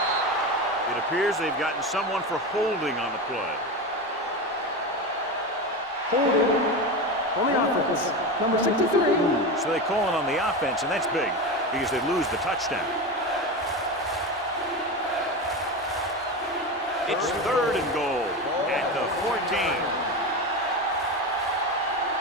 It appears they've gotten someone for holding on the play. Holding on the offense. Number 63. So they call it on the offense, and that's big because they lose the touchdown. It's third and goal at the 14.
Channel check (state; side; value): normal; both; correlation 0.21